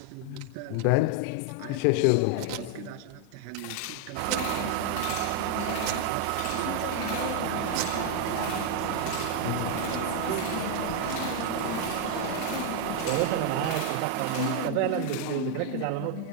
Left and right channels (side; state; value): both; different; correlation 0.00